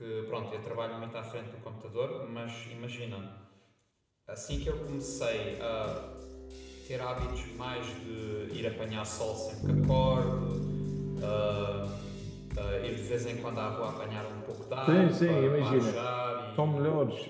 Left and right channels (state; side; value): identical; both; correlation 1.00